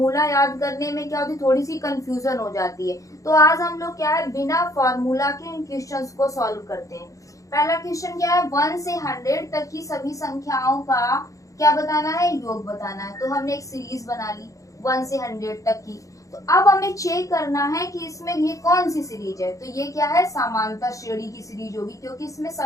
याद करने में क्या होती, थोड़ी सी कंफ्यूजन हो जाती है। तो आज हम लोग क्या है, बिना फार्मूला के इन क्वेश्चंस को सॉल्व करते हैं। पहला क्वेश्चन क्या है, 1 से 100 तक की सभी संख्याओं का क्या बताना है, योग बताना है। तो हमने एक सीरीज बना ली 1 से 100 तक की। तो अब हमें चेक करना है कि इसमें ये कौन सी सीरीज है। तो ये क्या है, समांतर श्रेणी की सीरीज होगी, क्योंकि इसमें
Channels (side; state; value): right; late; 0.16 ms